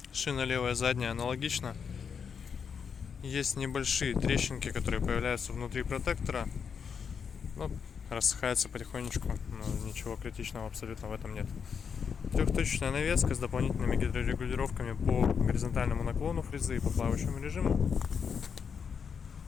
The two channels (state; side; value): quieter; right; 6.6 dB